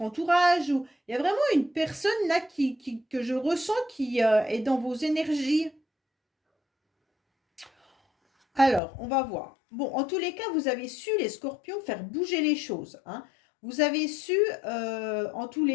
entourage. Ou il y a vraiment une personne là que je ressens qui est dans vos énergies. Alors, on va voir. Bon, en tous les cas, vous avez su, les scorpions, faire bouger les choses. Hein. Vous avez su, en tous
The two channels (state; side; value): drops out; right; at 8.8 s